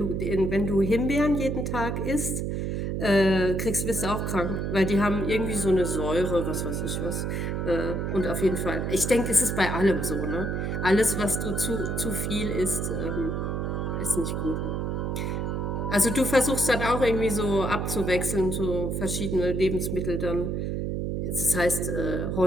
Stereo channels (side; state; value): right; noise; hum, 1 dB below the sound